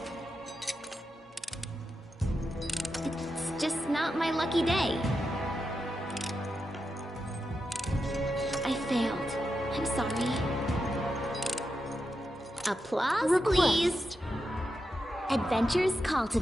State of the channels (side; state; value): both; normal; correlation 0.88